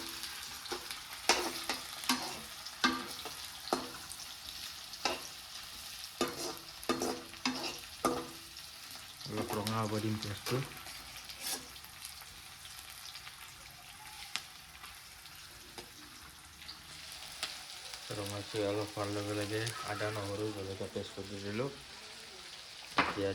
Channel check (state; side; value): identical; both; correlation 1.00